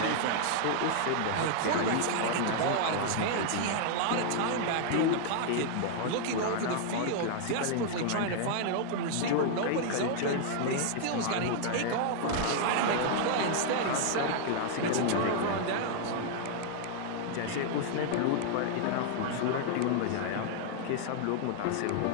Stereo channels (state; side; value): different; both; correlation 0.00